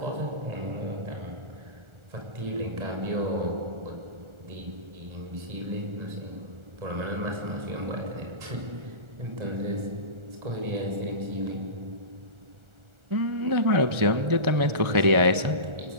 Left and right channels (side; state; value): left; late; 1.4 ms